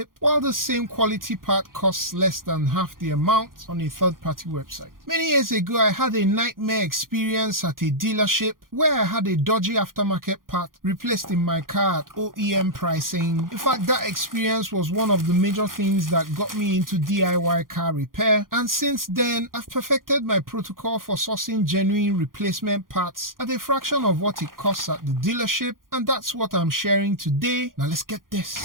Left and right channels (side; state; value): left; late; 0.90 ms